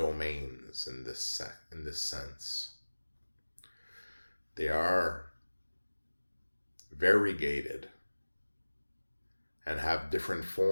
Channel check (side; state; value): both; inverted; correlation -1.00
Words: in this sense. They are variegated and have different